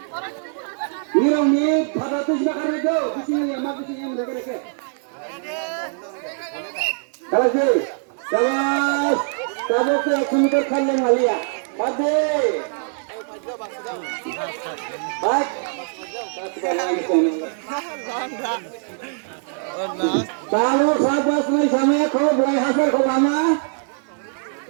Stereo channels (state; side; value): silent; left; 61 dB below the other